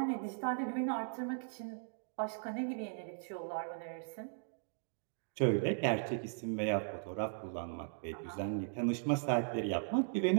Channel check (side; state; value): left; silent; digital silence